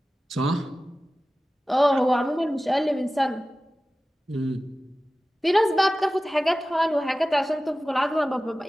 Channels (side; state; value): both; normal; correlation 0.96